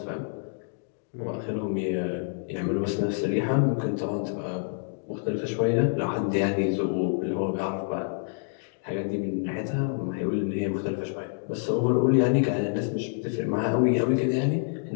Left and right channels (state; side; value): silent; right; digital silence